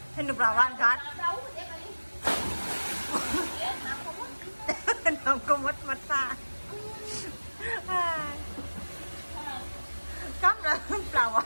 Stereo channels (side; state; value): both; inverted; correlation -1.00